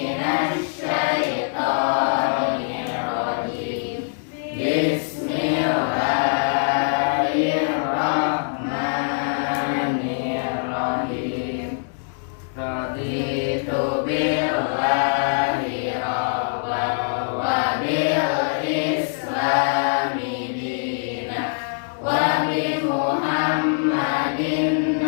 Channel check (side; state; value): right; silent; digital silence